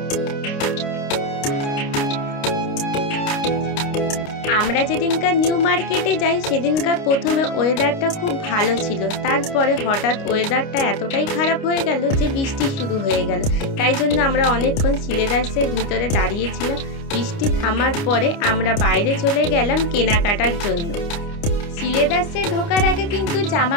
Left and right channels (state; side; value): late; right; 29 ms